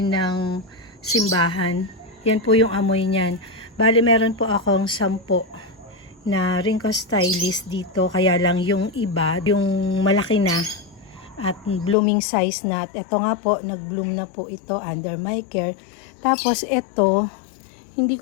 ng simbahan. Yan po yung amoy niyan. Bali, meron po akong 10 na Ringko Stylist dito. Kaya lang yung iba, yung malaki na at blooming size na. At ito nga po, nag-bloom na po ito under my care. Tapos ito, hindi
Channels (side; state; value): right; drops out; at 12.0 s